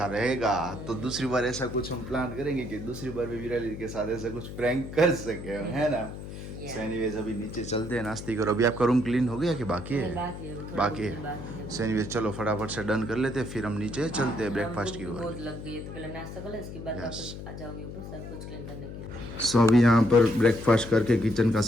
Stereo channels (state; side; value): noise; left; hum, 10 dB below the sound